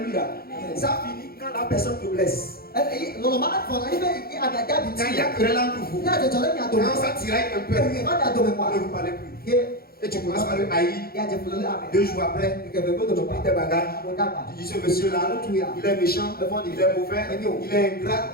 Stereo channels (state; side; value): late; right; 0.44 ms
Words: Ça finit quand la personne te blesse. Quand il y a querelle entre vous. Quand ça tiraille un peu, ne vous parlez plus. Et tu commences par le haïr. 2 jours après, tu prends tes bagages. Tu dis ce monsieur-là, il est méchant, il est mauvais, il est ingrat,